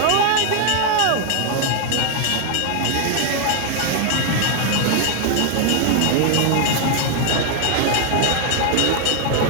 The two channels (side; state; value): both; different; correlation 0.00